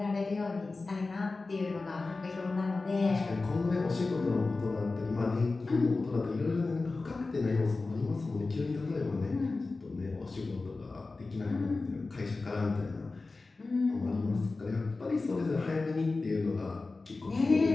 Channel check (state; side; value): quieter; right; 3.6 dB